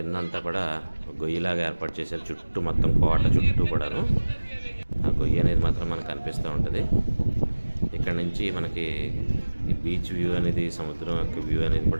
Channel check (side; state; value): both; inverted; correlation -1.00